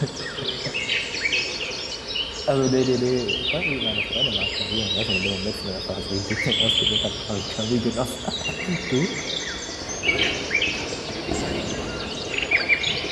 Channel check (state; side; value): identical; both; correlation 1.00